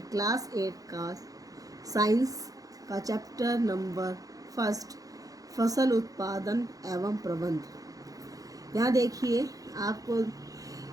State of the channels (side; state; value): left; late; 0.17 ms